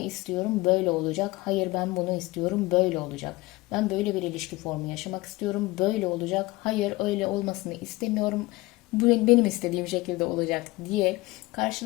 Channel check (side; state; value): right; quieter; 20.8 dB